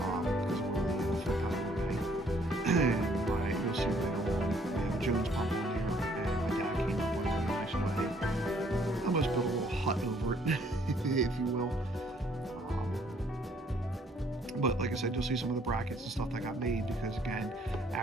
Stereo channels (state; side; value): normal; both; correlation 0.63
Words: of where the flip pedal would be. And you'll see later on, we have a Jones pump on here, and my dad came up with a really nice way. Almost built a little hut over it, if you will. But like I said, you'll see some of the brackets and stuff that got made, because again,